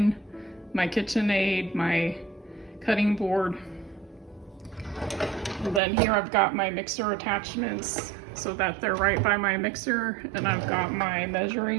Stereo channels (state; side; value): drops out; left; at 5.8 s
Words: my KitchenAid, my cutting board. And then here I've got my mixer attachments so that they're right by my mixer. And I've got my